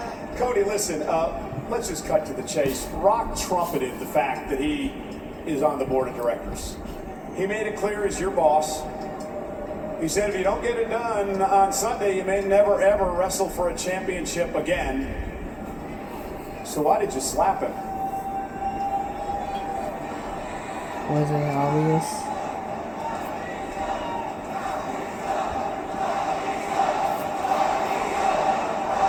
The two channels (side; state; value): both; identical; correlation 1.00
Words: Cody, listen, let's just cut to the chase. Rock trumpeted the fact that he is on the board of directors. He made it clear as your boss. He said if you don't get it done on Sunday, you may never ever wrestle for a championship again. So why did you slap him? Was it obvious?